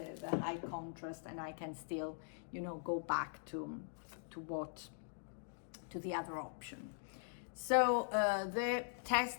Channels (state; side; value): silent; right; digital silence